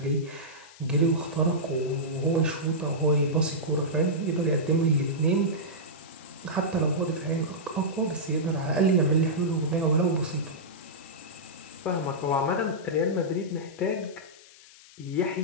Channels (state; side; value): noise; left; hiss, 22 dB below the sound